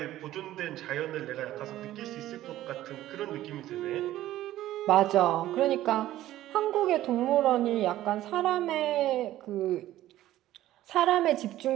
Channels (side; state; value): left; quieter; 14.2 dB